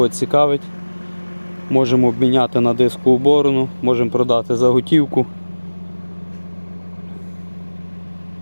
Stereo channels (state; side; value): inverted; both; correlation -1.00